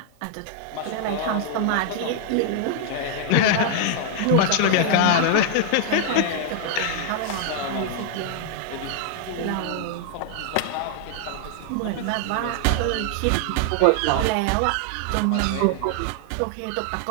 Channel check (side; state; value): both; different; correlation 0.00